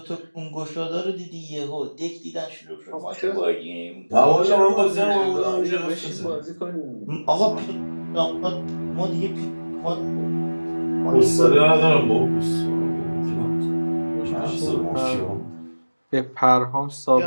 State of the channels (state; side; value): inverted; both; correlation -1.00